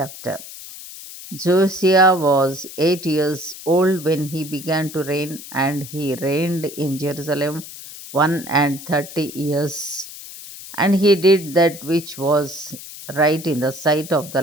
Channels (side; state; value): left; noise; hiss, 14 dB below the sound